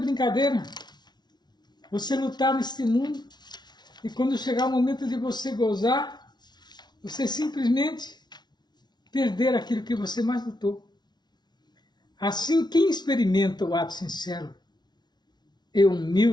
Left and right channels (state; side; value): late; right; 0.20 ms